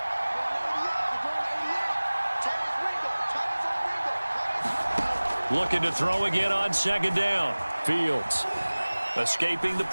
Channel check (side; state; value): both; inverted; correlation -1.00